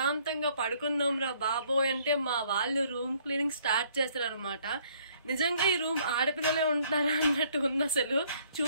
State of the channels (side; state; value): both; inverted; correlation -0.63